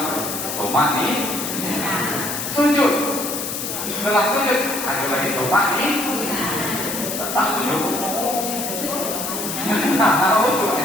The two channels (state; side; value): noise; left; hiss, 4 dB below the sound